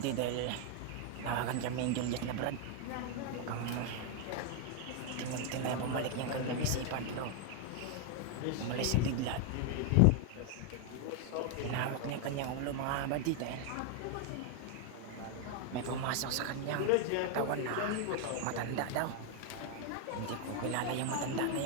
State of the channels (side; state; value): both; different; correlation 0.01